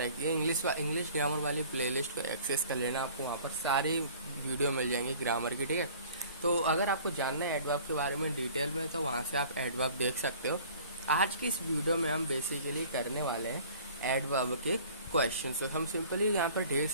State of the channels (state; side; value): inverted; both; correlation -0.49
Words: है। इंग्लिश ग्रामर वाली प्लेलिस्ट को एक्सेस कर लेना, आपको वहाँ पर सारी वीडियो मिल जाएंगी ग्रामर की। ठीक है, तो अगर आपको जानना है एडवर्ब के बारे में डिटेल में तो वहाँ से आप एडवर्ब देख सकते हो। आज की इस वीडियो में हम बेसिकली करने वाले हैं एडवर्ब के क्वेश्चन। तो हम सिंपली यहाँ पर ढेर